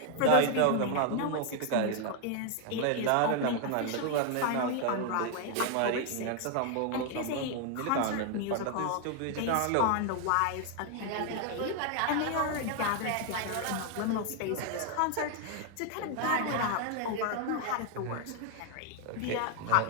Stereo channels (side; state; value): both; different; correlation 0.00